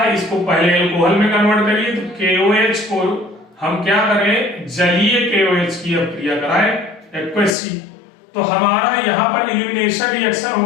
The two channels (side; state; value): right; drops out; at 7.6 s